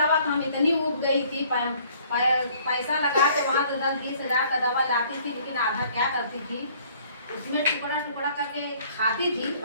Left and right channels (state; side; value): inverted; both; correlation -0.58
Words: तो हम इतनी उब गई थी, पैसा लगा के वहाँ से 10-20 हज़ार का दवा लाती थी, लेकिन आधा क्या करती थी, उसमें टुकड़ा टुकड़ा करके खाती थी,